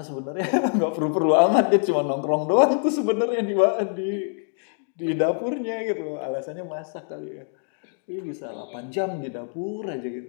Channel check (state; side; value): silent; right; 62 dB below the other